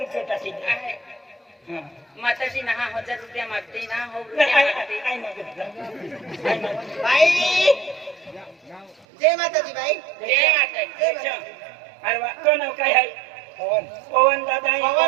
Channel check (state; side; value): drops out; left; at 9.1 s